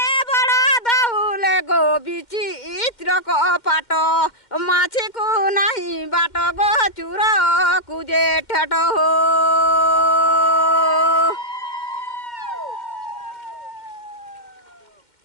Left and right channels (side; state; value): right; late; 2.1 ms